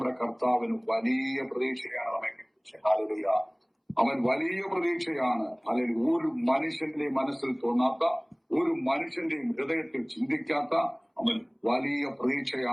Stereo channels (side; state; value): both; identical; correlation 1.00